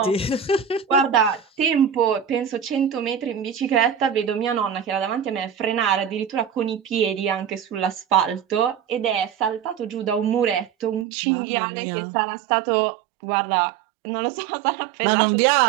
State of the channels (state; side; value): drops out; left; at 11.1 s